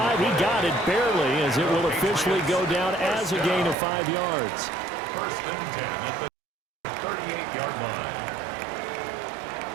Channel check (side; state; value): left; drops out; at 3.8 s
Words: He got it barely, as it will officially go down as a gain of 5 yards. First and 10 at the 38-yard line.